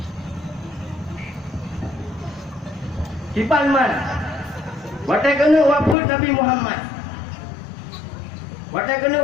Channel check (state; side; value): drops out; right; at 6.0 s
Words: Kipan man. Watai kena wafud Nabi Muhammad. Watai kena